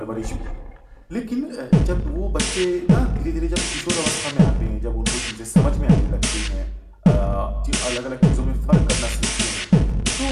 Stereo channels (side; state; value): both; identical; correlation 1.00